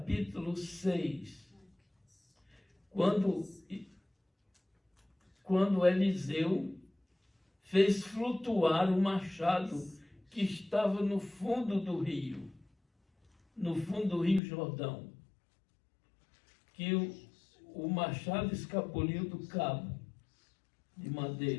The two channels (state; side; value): drops out; right; at 14.4 s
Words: 6, quando Eliseu fez flutuar o machado que estava no fundo do rio Jordão, que o machado escapuliu do cabo de